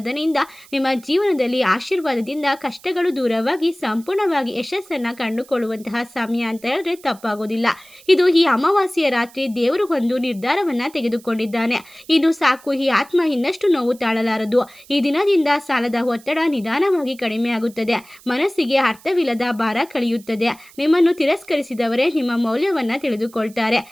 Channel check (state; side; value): noise; right; hiss, 24 dB below the sound